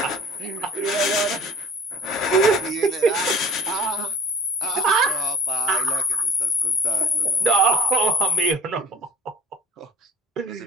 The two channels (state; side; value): normal; both; correlation 0.45